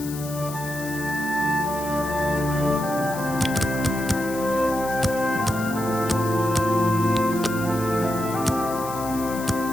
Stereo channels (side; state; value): left; noise; hiss, 12 dB below the sound